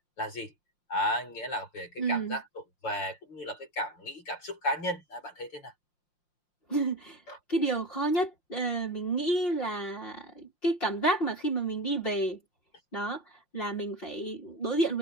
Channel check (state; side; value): late; right; 5.7 ms